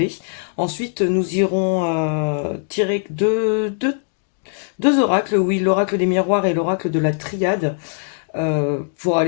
Ensuite nous irons tirer deux oracles, oui, l'oracle des miroirs et l'oracle de la triade. Pour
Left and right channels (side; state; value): right; silent; digital silence